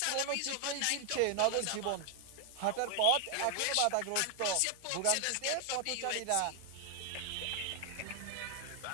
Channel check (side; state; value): both; different; correlation 0.00